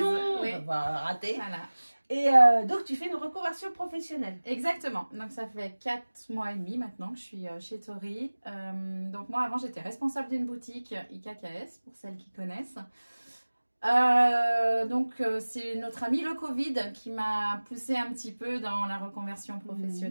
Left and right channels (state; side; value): inverted; both; correlation -1.00